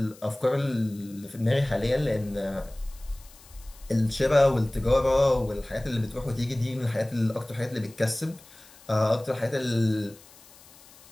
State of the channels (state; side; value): noise; left; hiss, 24 dB below the sound